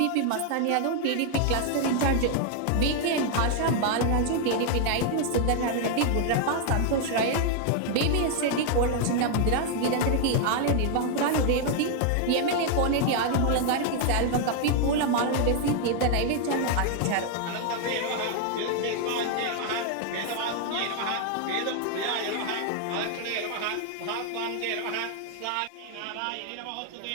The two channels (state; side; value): different; both; correlation 0.00